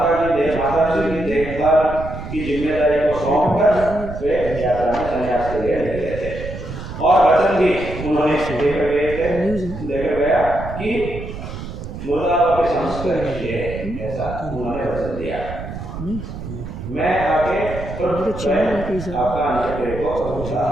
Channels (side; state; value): right; noise; rumble, 9 dB below the sound